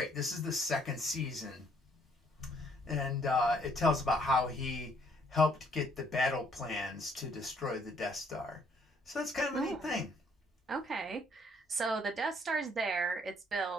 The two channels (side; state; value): both; normal; correlation 0.66